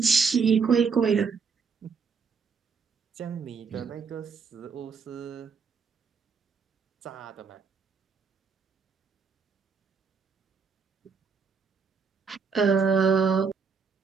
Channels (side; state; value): left; quieter; 5.5 dB